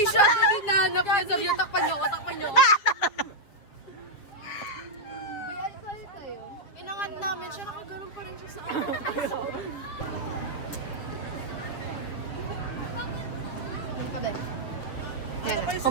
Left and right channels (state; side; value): late; right; 7.4 ms